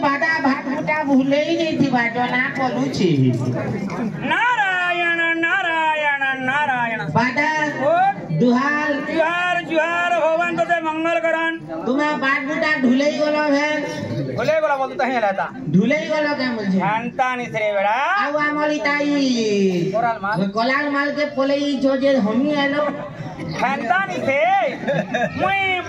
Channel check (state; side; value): identical; both; correlation 1.00